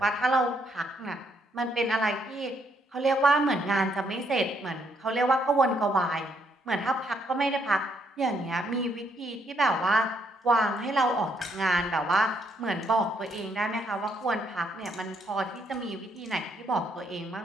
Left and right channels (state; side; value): normal; both; correlation 0.73